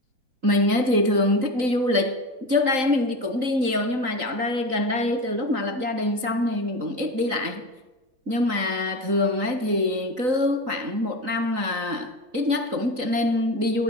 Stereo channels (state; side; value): late; left; 3.9 ms